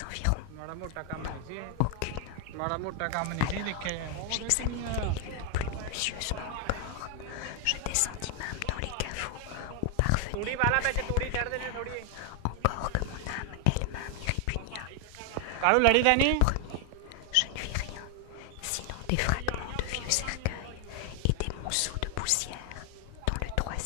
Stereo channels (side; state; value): both; different; correlation 0.00